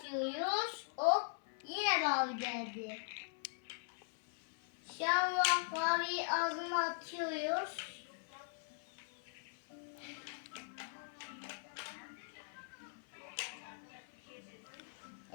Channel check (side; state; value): right; silent; 50 dB below the other